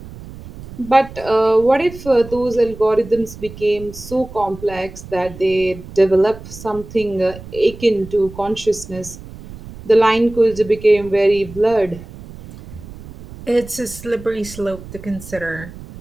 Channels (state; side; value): noise; right; rumble, 15 dB below the sound